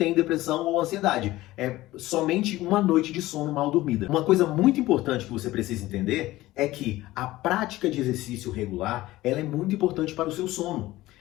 depressão ou ansiedade. É somente uma noite de sono mal dormida. Uma coisa muito importante que você precisa entender é que a prática de exercício regular, ela é muito importante para o seu sono.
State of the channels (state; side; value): quieter; right; 17.2 dB